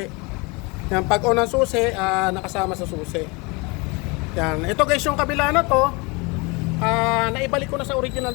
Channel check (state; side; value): quieter; right; 27.8 dB